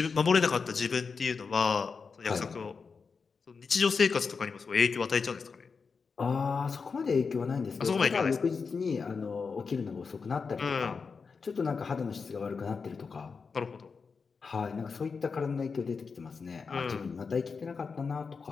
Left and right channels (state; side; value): quieter; right; 5.2 dB